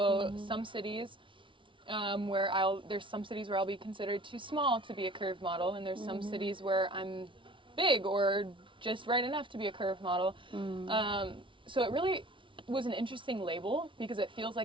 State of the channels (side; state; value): left; late; 0.25 ms